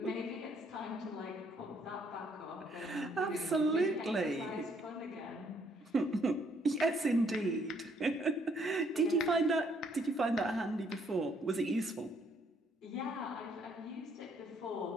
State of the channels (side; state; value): both; normal; correlation 0.68